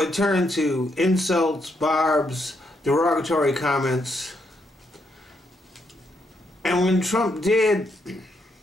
turned to insults, barbs, derogatory comments. And when Trump did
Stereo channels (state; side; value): normal; both; correlation 0.77